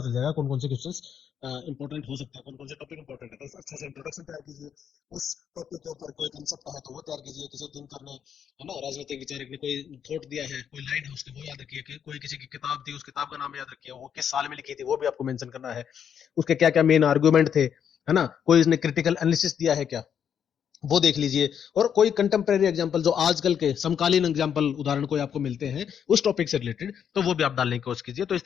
चल जाएगा कौन कौन से क्वेश्चंस इंपॉर्टेंट हो सकता है, कौन कौन से टॉपिक इंपॉर्टेंट है। तो अच्छा से इंट्रोडक्शन तैयार कीजिए, उस टॉपिक के ऊपर कोई कंसेप्ट है तो वो तैयार कीजिए, किसी दिन करने है ना, राजनीतिक विचारक ने कोई थॉट दिया है, कोई लाइन है उसकी वो याद रखिए, कोई किसी की किताब थी उस किताब का नाम याद रखिए, वो किस साल में लिखी थी वो भी आपको मेंशन करना है, उसके क्या क्या मेन आर्गुमेंट थे, है ना, कोई उसने क्रिटिकल एनालिसिस दिया है क्या, वो देख लीजिए। और कोई कंटेम्प्रेरी एग्जांपल जो आजकल के समकालीन एग्जांपल उदाहरण कोई आपको मिलते हैं उस टॉपिक से रिलेटेड, तो वो भी आप डालने की कोशिश कीजिए। तो इस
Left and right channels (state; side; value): quieter; right; 8.3 dB